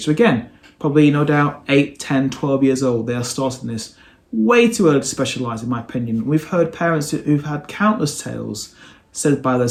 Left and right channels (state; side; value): identical; both; correlation 1.00